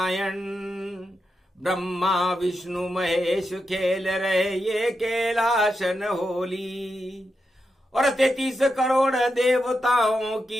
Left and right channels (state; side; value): normal; both; correlation 0.87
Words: ब्रह्मा विष्णु महेश खेल रहे ये कैलाशन होली। और 33 करोड़ देवताओं